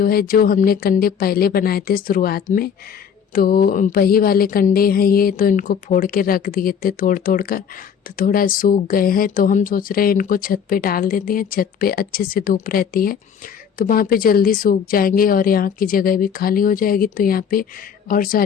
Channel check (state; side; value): quieter; right; 7.5 dB